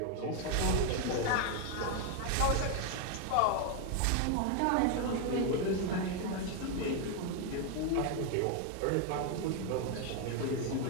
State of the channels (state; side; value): different; both; correlation 0.01